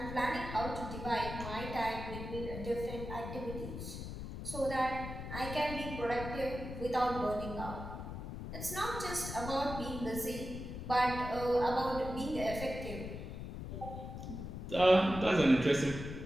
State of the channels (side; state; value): left; noise; rumble, 8 dB below the sound